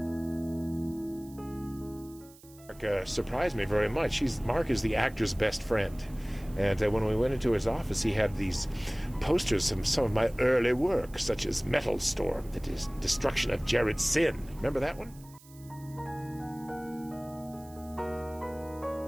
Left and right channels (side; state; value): right; noise; hiss, 23 dB below the sound